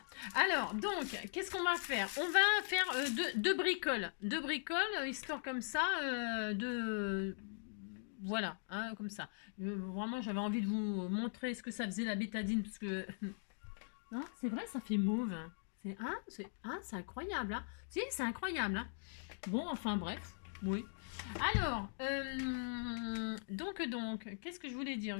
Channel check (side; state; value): right; silent; digital silence